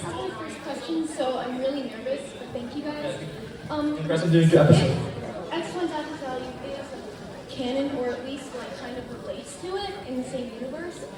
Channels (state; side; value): identical; both; correlation 1.00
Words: my first question, so I'm really nervous, but thank you guys. Congrats on doing your episode. X1's active value is canon, or at least like kind of relates to it in the same universe.